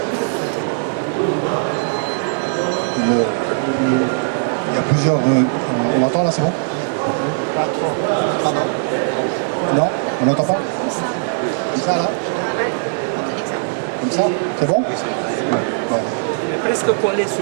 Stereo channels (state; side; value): silent; left; 65 dB below the other